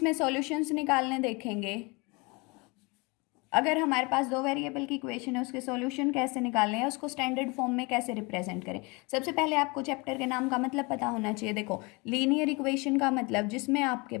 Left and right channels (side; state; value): right; quieter; 27.6 dB